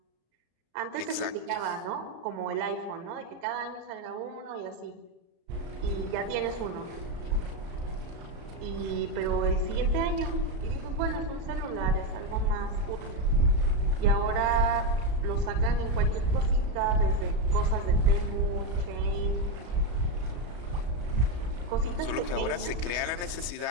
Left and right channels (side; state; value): left; late; 34 ms